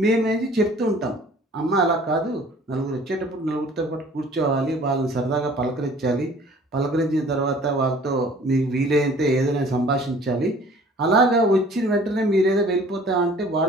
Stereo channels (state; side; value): normal; both; correlation 0.51